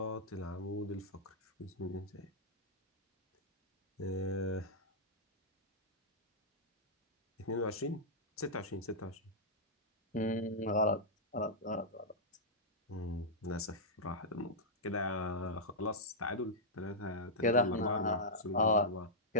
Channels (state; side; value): normal; both; correlation -0.10